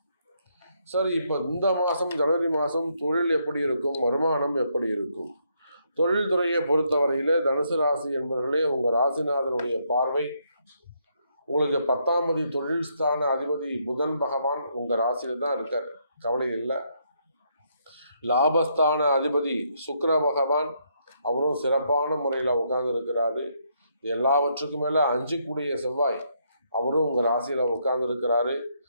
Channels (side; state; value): both; inverted; correlation -0.75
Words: சரி, இப்போ இந்த மாதம் ஜனவரி மாதம் தொழில் எப்படி இருக்கும், வருமானம் எப்படி இருக்கும்? தொழில் துறையை பொறுத்தவரையில் தனுசு ராசி என்பவர்களே, உங்கள் ராசிநாதனுடைய பார்வை உங்களுக்கு 10ஆம் தொழில் ஸ்தான அதிபதி புதன் பகவான் உங்கள் ராசியில் தான் இருக்கார், கவலை இல்லை. லாபஸ்தான அதிபதி சுக்கிர பகவான் அவரும் சிறப்பான முறையில் உட்கார்ந்து இருக்கிறாரு. எல்லாவற்றுக்கும் மேலே 5 செவ்வாய் அவரும் உங்கள் ராசியில் உட்கார்ந்து இருக்கிறாரு.